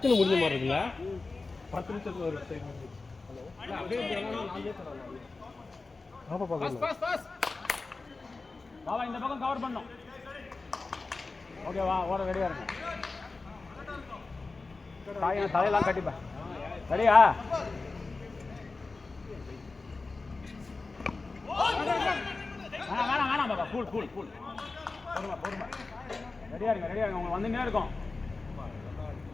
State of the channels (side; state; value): right; quieter; 3.7 dB